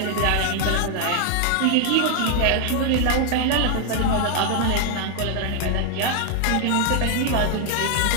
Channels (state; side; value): different; both; correlation 0.00